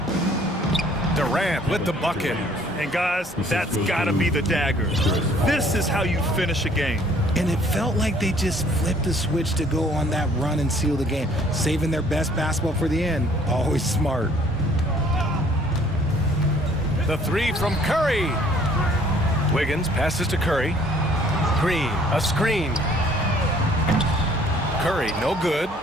Durant with the bucket. And guys, that's gotta be the dagger. This is how you finish a game. And it felt like they just flipped the switch to go on that run and seal the game. Saving their best basketball for the end. Always smart. The three from Curry. Wiggins passes to Curry. Green, a screen. Curry, no good.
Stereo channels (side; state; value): both; normal; correlation 0.58